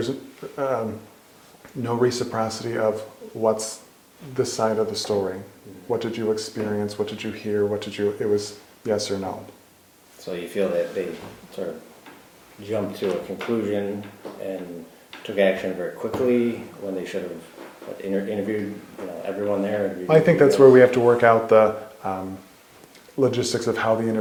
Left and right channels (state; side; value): identical; both; correlation 1.00